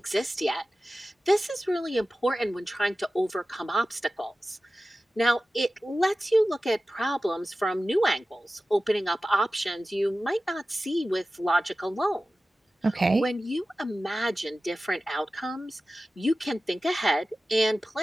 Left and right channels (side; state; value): both; normal; correlation 0.95